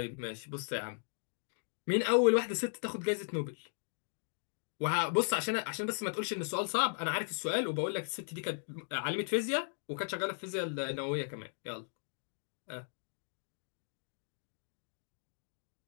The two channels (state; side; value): silent; right; digital silence